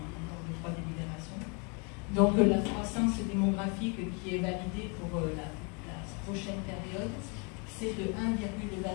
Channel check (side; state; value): right; quieter; 34.2 dB